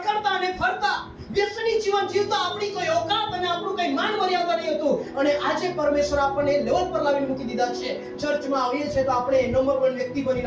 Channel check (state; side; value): identical; both; correlation 1.00